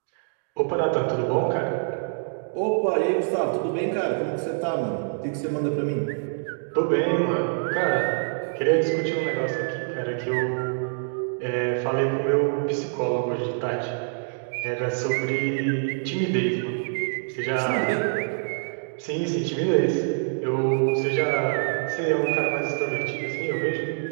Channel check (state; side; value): silent; left; digital silence